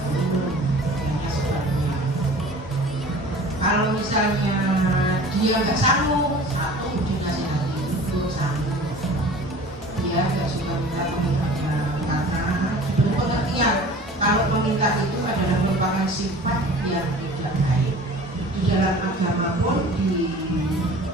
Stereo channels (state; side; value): normal; both; correlation 0.43